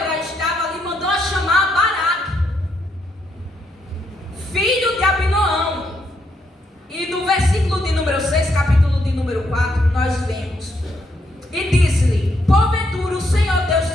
estava ali, mandou chamar Baraque, filho de Abinoão. E no versículo de número 6, capítulo de número 4, nós vemos: e disse-lhe: porventura o Senhor Deus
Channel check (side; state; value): both; normal; correlation 0.76